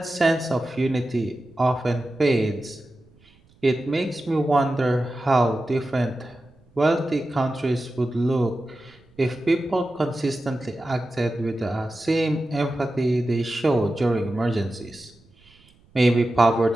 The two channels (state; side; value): noise; right; rumble, 30 dB below the sound